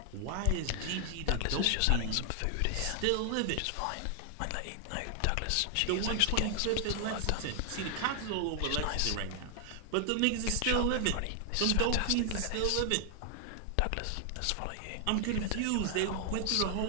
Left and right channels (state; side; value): different; both; correlation 0.00